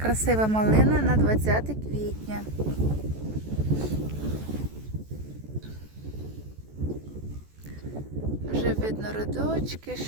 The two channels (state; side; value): late; left; 14 ms